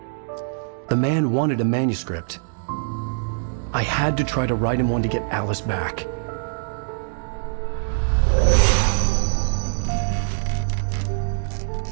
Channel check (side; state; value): left; silent; digital silence